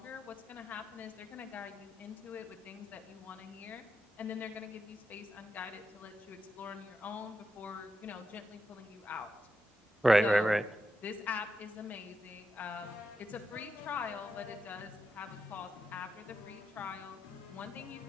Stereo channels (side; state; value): both; normal; correlation 0.86